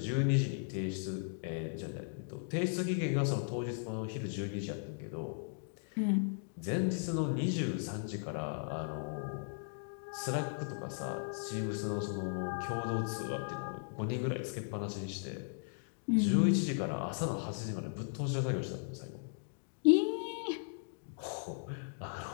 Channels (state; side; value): silent; right; digital silence